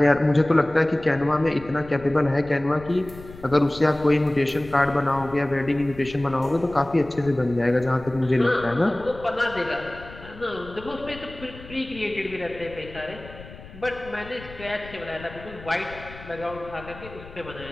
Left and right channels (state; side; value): noise; left; rumble, 17 dB below the sound